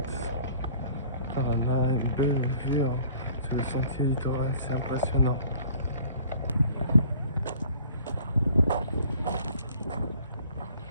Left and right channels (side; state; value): both; inverted; correlation -0.52